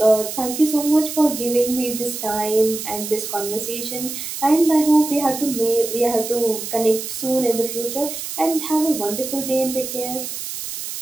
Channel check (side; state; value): right; noise; hiss, 7 dB below the sound